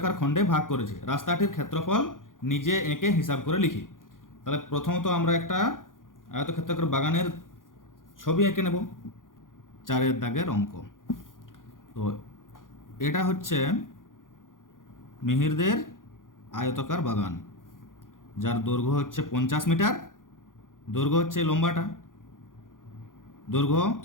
খণ্ডে ভাগ করেছে। রাস্তাটির ক্ষেত্রফল নিজে এঁকে হিসাব করে লিখি। তাহলে প্রথমত আমরা একটা আয়তক্ষেত্রাকার বাগানের ছবি এঁকে নেব। 4-এর দাগের অঙ্ক। তো এটা হচ্ছে মিহিরদের আয়তাকার বাগান, যার দৈর্ঘ্য হচ্ছে 50 মিটার। দৈর্ঘ্য হচ্ছে লম্বাটা, দৈর্ঘ্য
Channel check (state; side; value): late; right; 0.89 ms